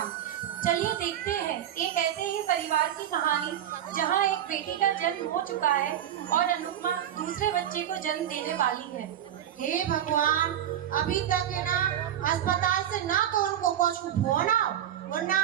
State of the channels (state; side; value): quieter; left; 10.7 dB